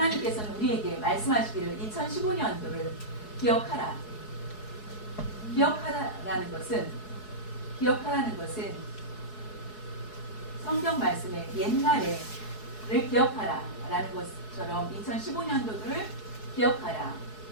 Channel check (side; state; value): right; late; 4.7 ms